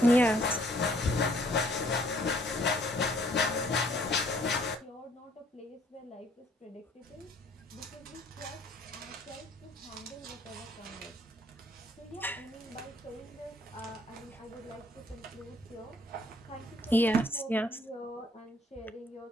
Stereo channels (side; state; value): both; normal; correlation 0.62